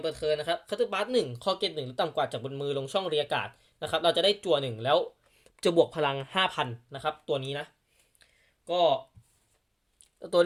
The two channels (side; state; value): both; identical; correlation 1.00